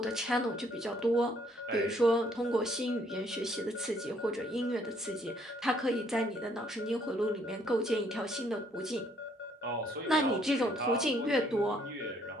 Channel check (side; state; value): both; normal; correlation 0.66